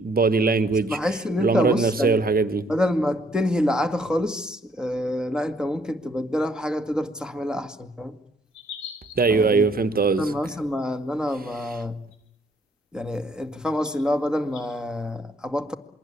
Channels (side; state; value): both; normal; correlation 0.66